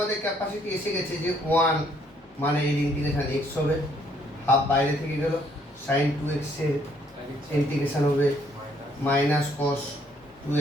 ক্যাপাসিটি এসে গেছে যে 1 মানে এর ইন্টিগ্রেশন x হবে, হাফ বাইরে থেকে গেল, sin 2x এর ইন্টিগ্রেশন হবে minus cos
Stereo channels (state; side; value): normal; both; correlation 0.66